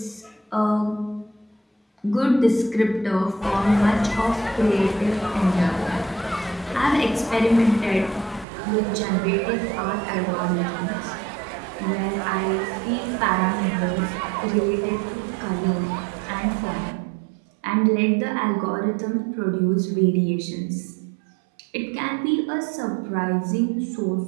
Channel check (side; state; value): left; drops out; at 8.5 s